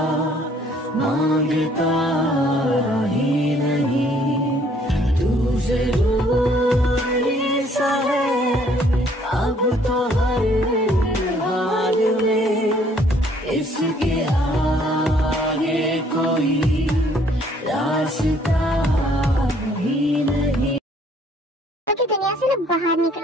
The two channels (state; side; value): normal; both; correlation 0.62